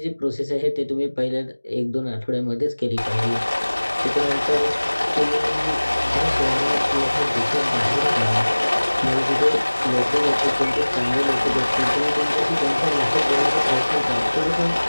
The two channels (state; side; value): inverted; both; correlation -1.00